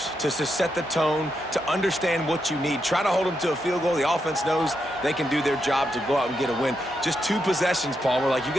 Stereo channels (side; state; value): both; normal; correlation 0.83